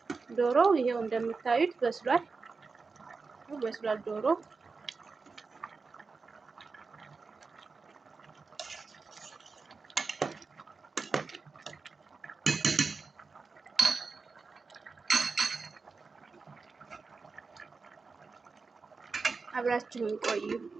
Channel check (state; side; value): quieter; left; 4.5 dB